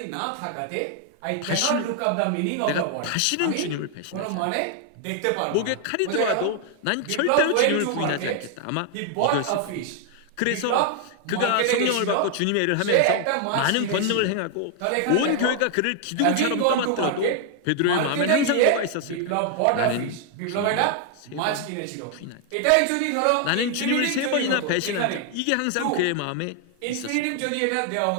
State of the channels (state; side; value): different; both; correlation 0.00